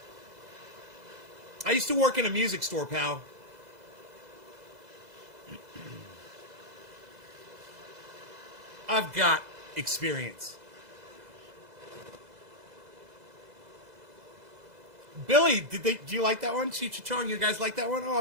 I used to work in a music store, pal. I've got experience. Billy, do you like that one? Cheech Chong, you guys like that one? Oh,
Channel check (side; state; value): left; late; 2.0 ms